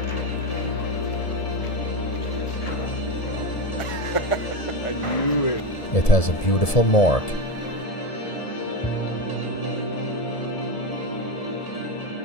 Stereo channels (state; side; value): late; right; 1.7 ms